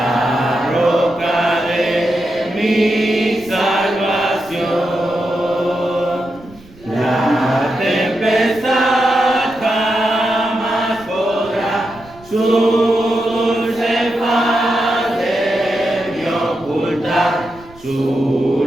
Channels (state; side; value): noise; right; rumble, 23 dB below the sound